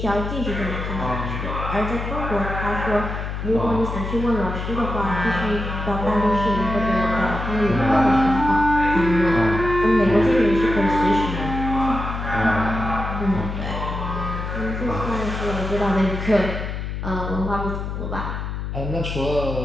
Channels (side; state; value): left; noise; hum, 5 dB below the sound